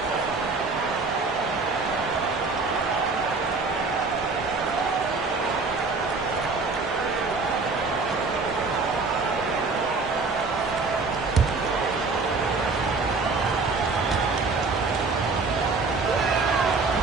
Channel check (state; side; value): quieter; left; 4.1 dB